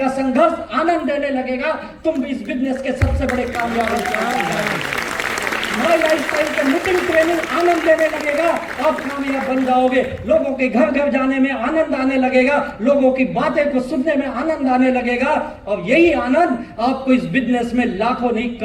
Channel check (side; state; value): both; identical; correlation 1.00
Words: संघर्ष आनंद देने लगेगा, तुम भी इस बिजनेस के सबसे बड़े कामयाब हो। माई लाइफ स्टाइल के मीटिंग ट्रेनिंग आनंद देने लगेगा, आप कामयाब बन जाओगे। लोगों के घर घर जाने में आनंद आने लगेगा, लोगों की बातें को सुनने में आनंद आने लगेगा। और यही आनंद आपको इस बिजनेस में लाखों नहीं